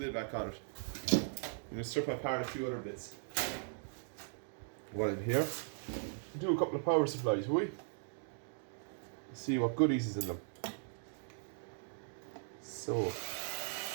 back on it. I'm going to strip apart a few other bits. While I'm here, do a couple of power supplies, will we? See what goodies is in them. So,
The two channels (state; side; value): silent; left; digital silence